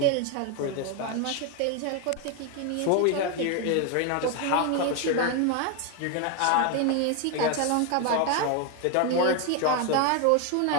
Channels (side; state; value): both; different; correlation 0.01